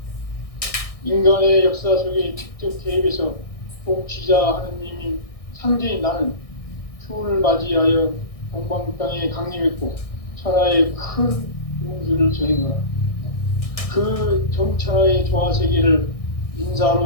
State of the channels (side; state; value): right; late; 1.6 ms